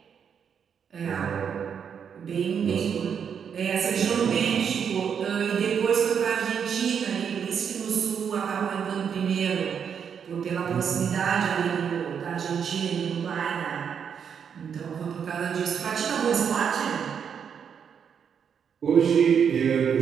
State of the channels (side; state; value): left; quieter; 7.4 dB